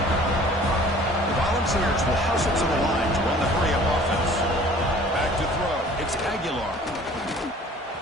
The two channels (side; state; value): both; normal; correlation 0.50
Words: The Volunteers will hustle to the line to run the hurry-up offense. Back to throw. It's Aguilar.